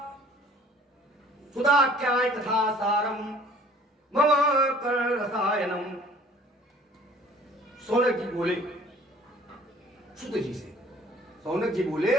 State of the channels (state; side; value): normal; both; correlation 0.52